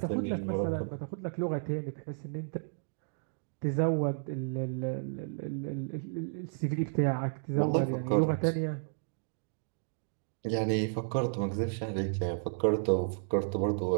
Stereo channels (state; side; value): silent; left; digital silence